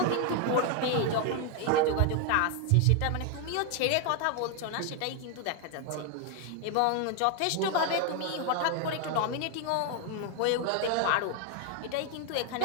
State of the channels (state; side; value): different; both; correlation 0.01